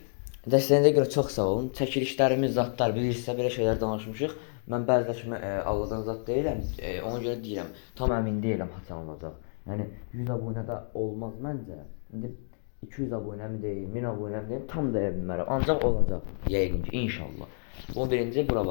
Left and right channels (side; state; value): right; silent; digital silence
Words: Dəstəyinizə görə çox sağ olun. Çəkilişlərimiz, zatlar bilirsinizsə belə şeylər danışmışıq. Mən bəziləşmə Allahdan zat deyirəm. Ona görə deyirəm, tam əmin deyiləm haçan olacaq. Yəni 100 abunədə olmaz məncə. İndi 200 abunəmi deyim, 1000 abunəmi deyim, tam deyə bilmərəm. Ancaq olacaq yəqin ki, inşallah. Bunu birinci bura